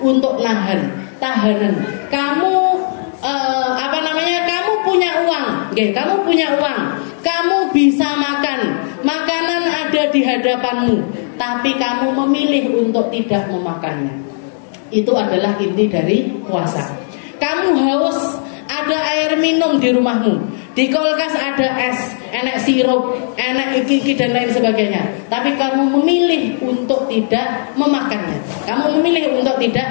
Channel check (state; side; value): silent; right; digital silence